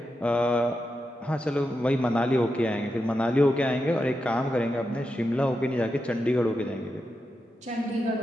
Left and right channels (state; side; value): normal; both; correlation 0.88